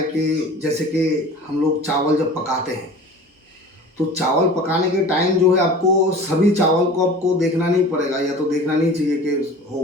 कि जैसे कि हम लोग चावल जब पकाते हैं, तो चावल पकाने के टाइम जो है आपको सभी चावल को आपको देखना नहीं पड़ेगा, या तो देखना नहीं चाहिए कि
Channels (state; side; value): normal; both; correlation 0.40